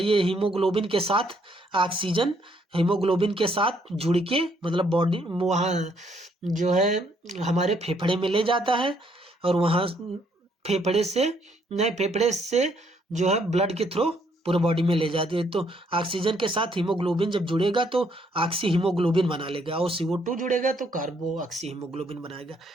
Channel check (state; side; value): normal; both; correlation 0.70